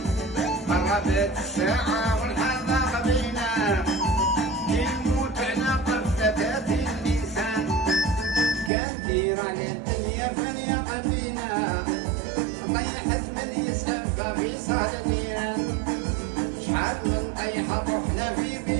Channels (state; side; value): drops out; left; at 8.7 s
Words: قربت الساعة والحال ضاق بينا يموت على قفزة الإنسان كان دير على الدنيا فليقى بينا طيحت من يسأل ففي صدرنا شحال من طيحة رحنا في